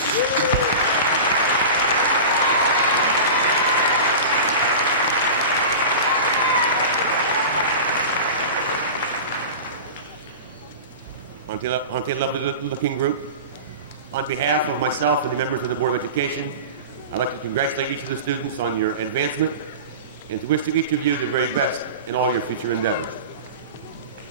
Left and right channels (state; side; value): inverted; both; correlation -0.31